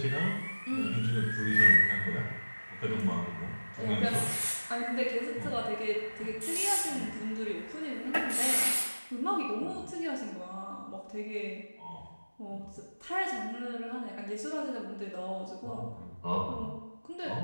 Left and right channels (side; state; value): both; inverted; correlation -1.00